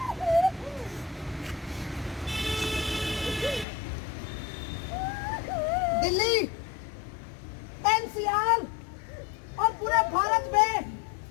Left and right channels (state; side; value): drops out; right; at 3.7 s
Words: दिल्ली, एनसीआर और पूरे भारत में